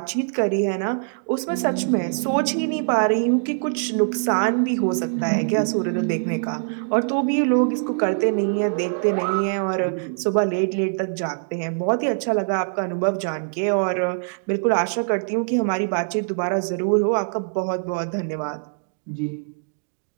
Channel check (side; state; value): left; silent; digital silence